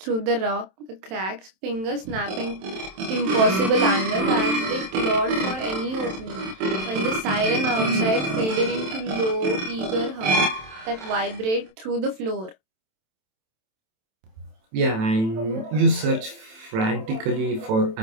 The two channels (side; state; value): left; late; 27 ms